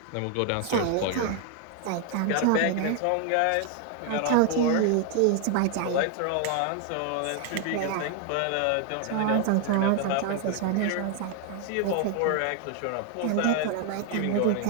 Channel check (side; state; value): both; different; correlation 0.00